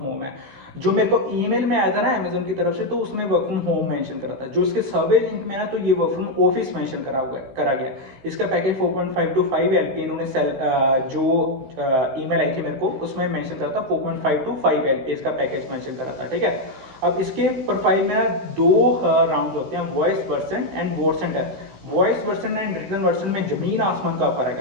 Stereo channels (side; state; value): left; late; 15 ms